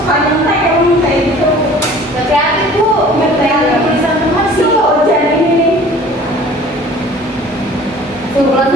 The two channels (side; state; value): both; normal; correlation 0.47